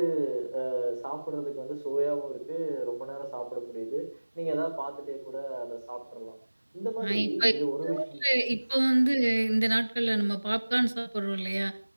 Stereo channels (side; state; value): both; inverted; correlation -1.00